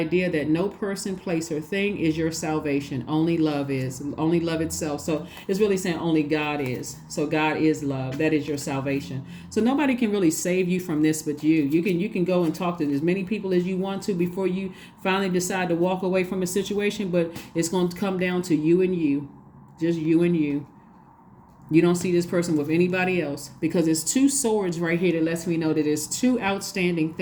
that no person, place, or thing is your salvation. Only love is. Only love itself. So it's really saying only God is. So God is love. That is your salvation. So nobody can really save you from this but you. You can go and talk to as many people as you want to before you finally decide to walk away from a situation, but it's going to come down to you and you. Just you and you. You don't see this person with anybody else, because it's 2 swords right here that lets me know that there's 2 outstanding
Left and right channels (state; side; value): identical; both; correlation 1.00